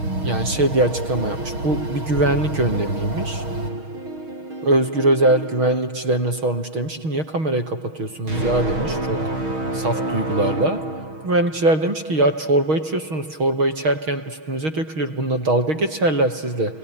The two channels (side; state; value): left; late; 6.4 ms